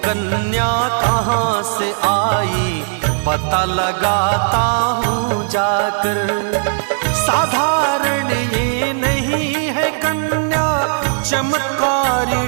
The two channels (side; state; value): left; silent; 66 dB below the other